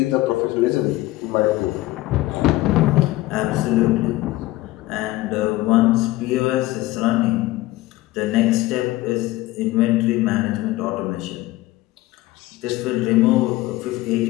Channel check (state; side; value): quieter; right; 17.8 dB